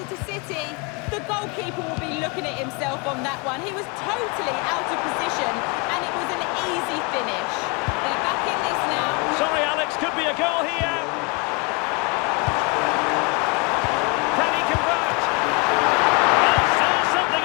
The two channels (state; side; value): quieter; right; 30.0 dB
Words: City. The goalkeeper will be looking at himself on that one. He was totally out of position, and it was an easy finish. They're back in this now. Sorry, Alex, could be a goal here. Can he convert? Is there something